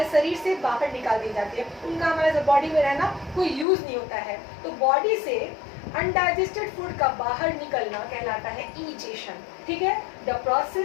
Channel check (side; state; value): right; drops out; at 3.7 s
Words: शरीर से बाहर निकाल दिए जाते हैं, उनका हमारे बॉडी में रहना कोई यूज नहीं होता है। तो बॉडी से अनडाइजेस्टेड फूड का बाहर निकलना कहलाता है ईजेशन। ठीक है, the